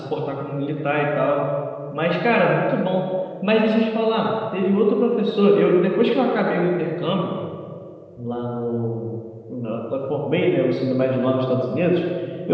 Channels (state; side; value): identical; both; correlation 1.00